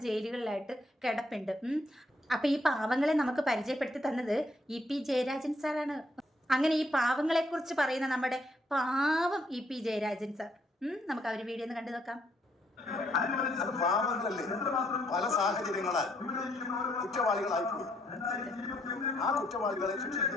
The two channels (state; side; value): normal; both; correlation 0.72